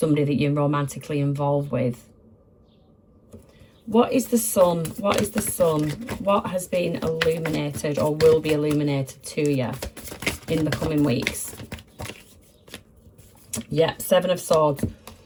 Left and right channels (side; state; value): both; identical; correlation 1.00